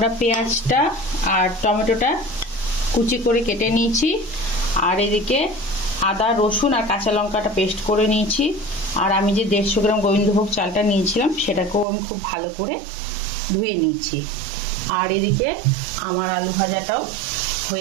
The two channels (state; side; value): drops out; left; at 11.9 s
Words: পেঁয়াজটা আর টমেটোটা কুচি করে কেটে নিয়েছি। আর এদিকে আদা, রসুন আর কাঁচা লঙ্কাটা পেস্ট করে নিয়েছি। আর আমি যে 150 গ্রাম গোবিন্দভোগ চালটা নিয়েছিলাম সেটাকেও আমি খুব ভালো করে ধুয়ে নিয়েছি। আর এদিকে আমার আলু ভাজাটাও